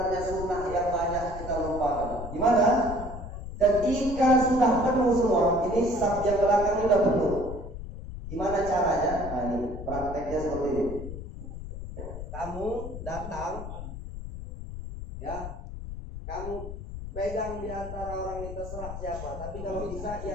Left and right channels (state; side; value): noise; left; rumble, 9 dB below the sound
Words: sunnah yang banyak kita lupakan. Gimana? Ketika sudah penuh semua, ini saf yang belakang ini udah penuh. Gimana caranya? Nah, ini prakteknya seperti ini. Kamu datang, ya, kamu pegang di antara orang ini terserah siapa. Tapi kalau bisa